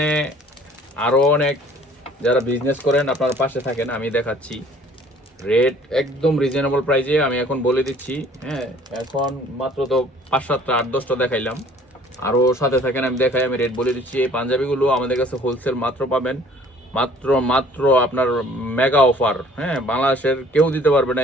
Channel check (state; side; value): normal; both; correlation 0.54